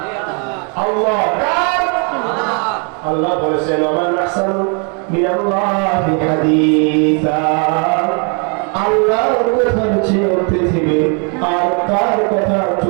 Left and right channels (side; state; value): left; quieter; 37.4 dB